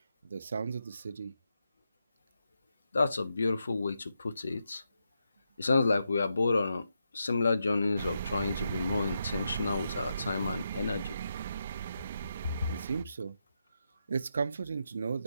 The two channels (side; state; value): both; inverted; correlation -0.84